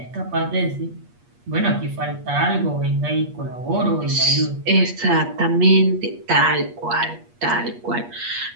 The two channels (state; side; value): late; left; 8.4 ms